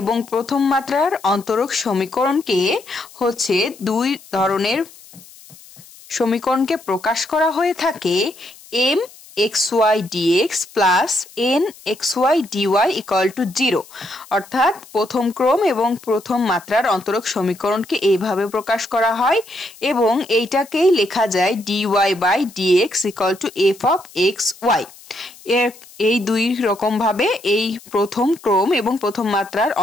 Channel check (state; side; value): noise; left; hiss, 22 dB below the sound